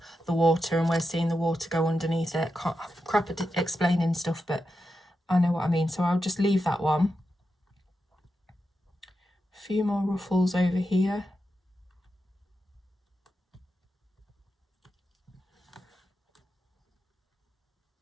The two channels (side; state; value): both; normal; correlation 0.88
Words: the water and we're seeing the water go underneath it. Crap at explaining stuff, but I know what I mean. So I'll just leave that one. A few more ruffles over here.